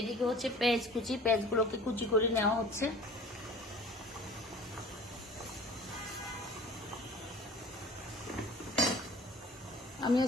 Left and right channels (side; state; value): both; normal; correlation 0.44